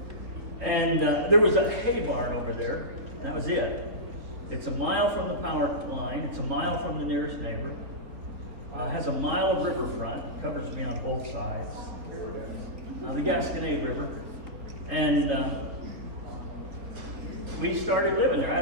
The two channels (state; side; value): late; left; 3.6 ms